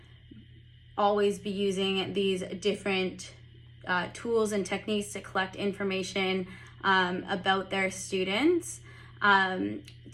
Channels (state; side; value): identical; both; correlation 1.00